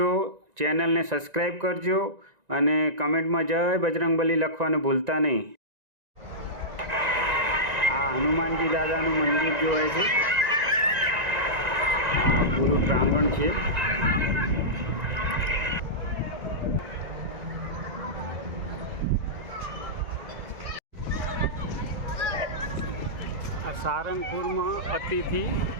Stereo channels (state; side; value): late; left; 1.9 ms